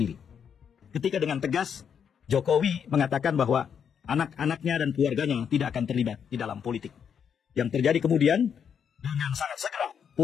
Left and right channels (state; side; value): quieter; right; 7.5 dB